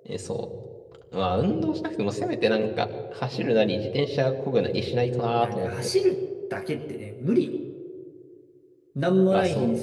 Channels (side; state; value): both; identical; correlation 1.00